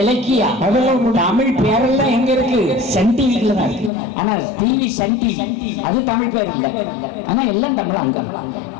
அதெல்லாம் தமிழ் பேரெல்லாம் எங்க இருக்கு? சன் டிவில தான் இருக்கு. ஆனா டிவி சன் டிவி அது தமிழ் பேர் இல்ல. ஆனா எல்லாம் தமிழ் அங்க.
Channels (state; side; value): drops out; right; at 3.9 s